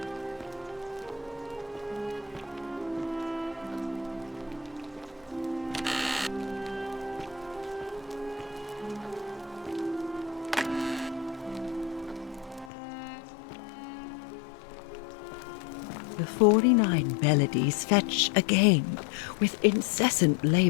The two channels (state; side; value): drops out; right; at 12.7 s